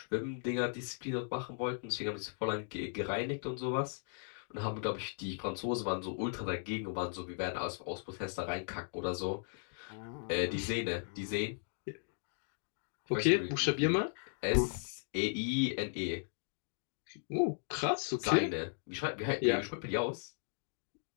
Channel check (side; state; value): right; silent; digital silence